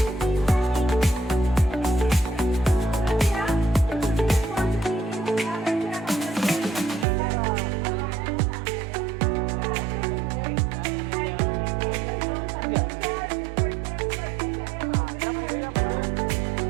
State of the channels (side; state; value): left; drops out; at 7.1 s